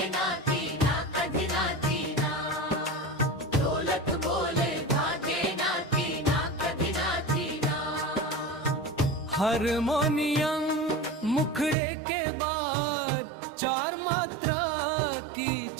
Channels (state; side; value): drops out; left; at 11.8 s